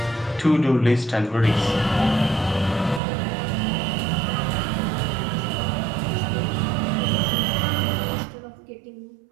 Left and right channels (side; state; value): left; drops out; at 3.0 s